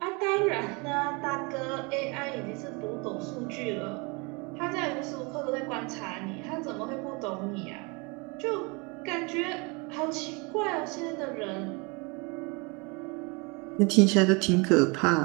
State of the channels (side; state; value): left; quieter; 29.6 dB